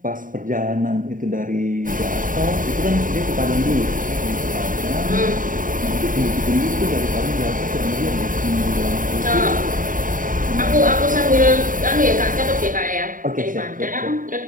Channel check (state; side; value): late; left; 0.39 ms